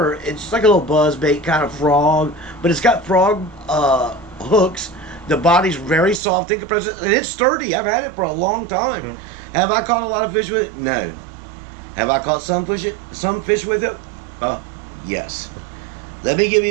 it's just like a little buzzbait kind of frog. But it's got frog hooks. The body's very soft in comparison, and it's sturdy. I've had it for a long time. Mm. Have I caught a lot of fish with it? No. Have I caught some fish with it? Yes. Let me give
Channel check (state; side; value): drops out; left; at 6.2 s